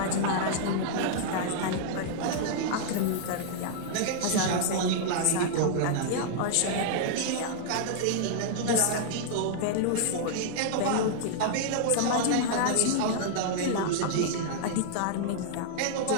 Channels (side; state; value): both; different; correlation -0.01